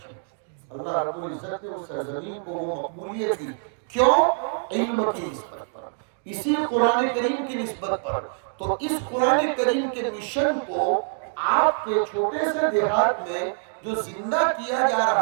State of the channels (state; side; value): silent; left; digital silence